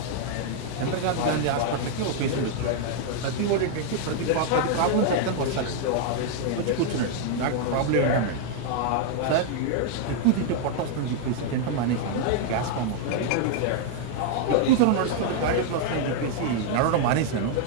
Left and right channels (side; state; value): both; different; correlation 0.00